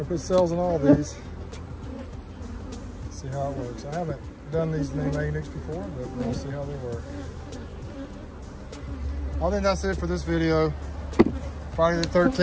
put cells in all these. See how it works. I haven't done these mini mating nukes before, but we'll see how they work. I think that's it for this video. Friday the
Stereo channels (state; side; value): identical; both; correlation 1.00